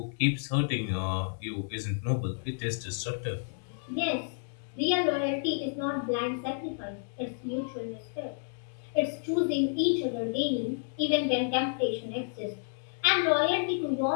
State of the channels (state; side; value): silent; right; digital silence